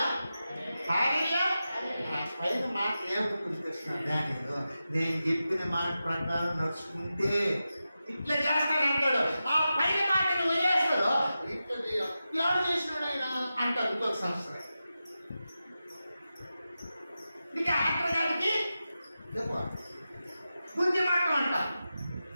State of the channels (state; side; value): inverted; both; correlation -0.92